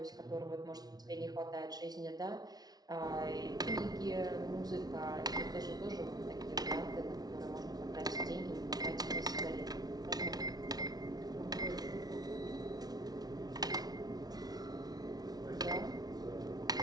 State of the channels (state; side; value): late; left; 0.19 ms